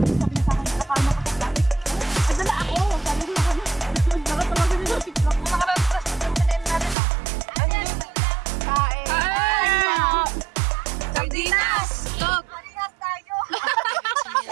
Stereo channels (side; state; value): left; drops out; at 7.0 s